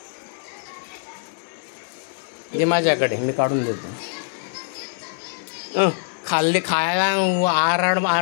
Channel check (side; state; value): right; silent; digital silence